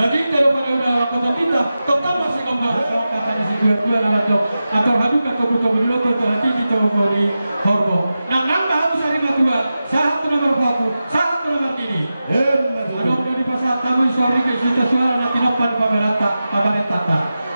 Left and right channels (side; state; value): both; inverted; correlation -0.93